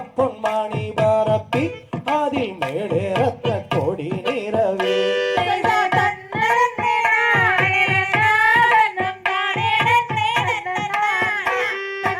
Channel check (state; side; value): identical; both; correlation 1.00